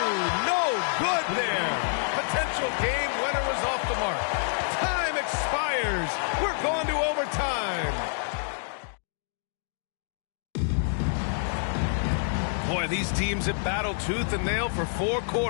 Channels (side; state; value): right; silent; digital silence